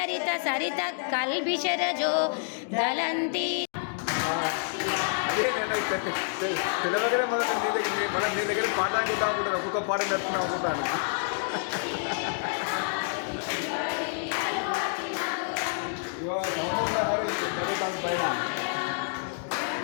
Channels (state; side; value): silent; right; digital silence